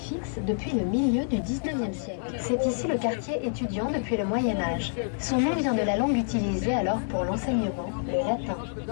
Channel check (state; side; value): silent; right; digital silence